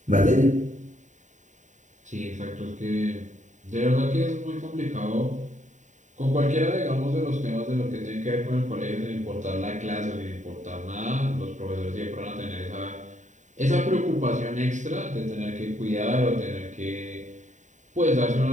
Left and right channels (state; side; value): late; left; 0.36 ms